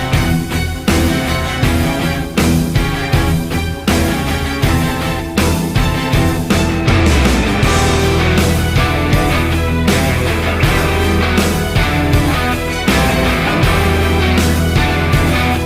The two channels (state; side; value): identical; both; correlation 1.00